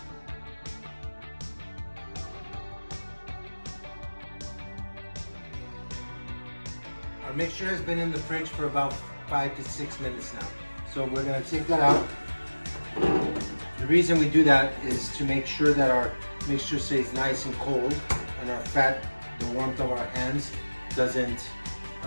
Our mixture has been in the fridge for about 5 to 6 minutes now. So we're gonna take that out. The reason we do that is to make sure that our mixture stays nice and cold and our fat, the warmth of our hands, doesn't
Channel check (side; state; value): both; inverted; correlation -1.00